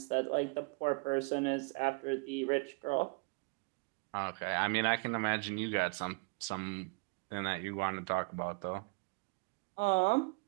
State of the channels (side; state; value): left; quieter; 31.5 dB